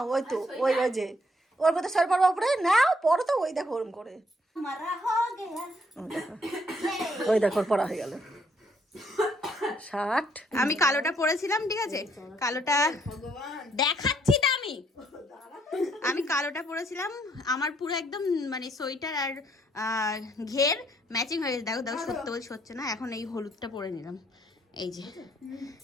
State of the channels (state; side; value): normal; both; correlation 0.70